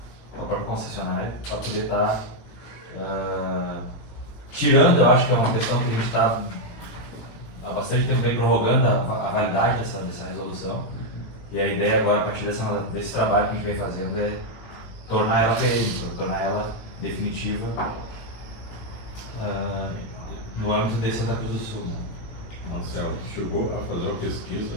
a própria concessionária, para poder estar tirando, eu acho que é uma questão que a gente está há bastante tempo bem prorrogando a validade dessa resolução. E a ideia agora, a partir desse trabalho que a gente vem fazendo, é tornar ela perene, tornar ela definitiva no âmbito de Santa Cruz do Sul. Né? Marcelo, chegou a fazer uma pesquisa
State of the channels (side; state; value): right; late; 18 ms